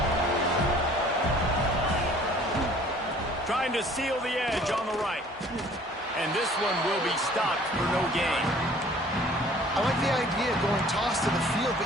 Trying to seal the edge on the right. And this one will be stopped for no gain. I like the idea of going toss to the field, but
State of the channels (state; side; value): normal; both; correlation 0.53